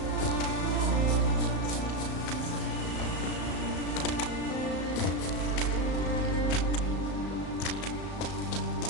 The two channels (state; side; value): late; right; 35 ms